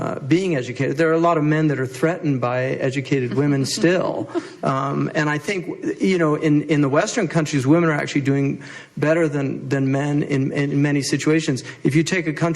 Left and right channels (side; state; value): both; identical; correlation 1.00